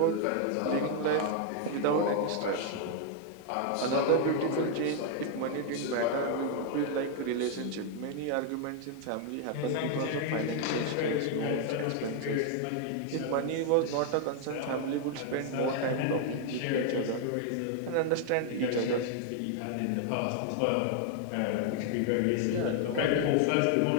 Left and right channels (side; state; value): both; different; correlation 0.00